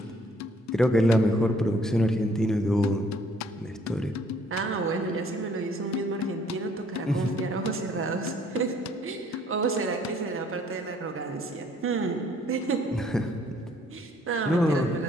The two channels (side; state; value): both; normal; correlation 0.62